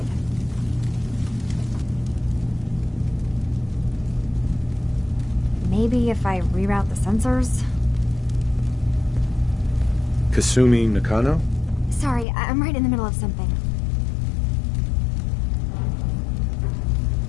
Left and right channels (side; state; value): right; drops out; at 12.2 s